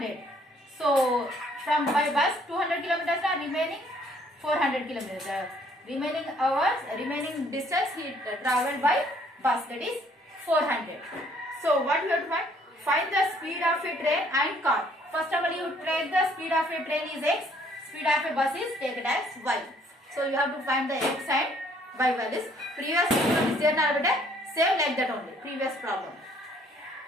So from by bus 200 kilometers are remaining 400 kilometers. Remaining hours, remaining distance he traveled by bus, that is 400. So what you have to find? Find the speed of a train and car. First of all, you take the speed of a train is x, speed of a bus is taken as y. So you have to find the x and y values. Previous problem is there now, same like that only. Previous problem.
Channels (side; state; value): both; normal; correlation 0.62